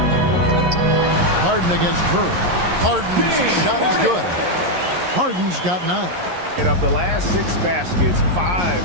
Harden against Curry. Harden's shot is good. Harden's got 9. And of the last 6 baskets, 5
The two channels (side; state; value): left; late; 11 ms